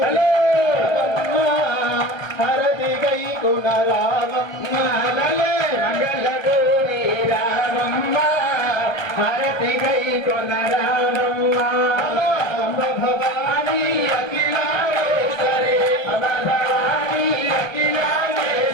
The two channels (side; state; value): right; late; 1.2 ms